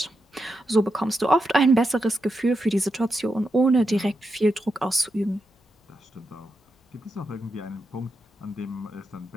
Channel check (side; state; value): both; normal; correlation 0.86